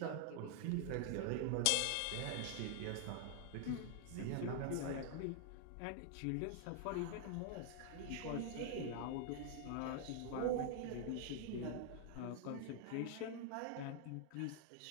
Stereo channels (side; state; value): both; different; correlation 0.00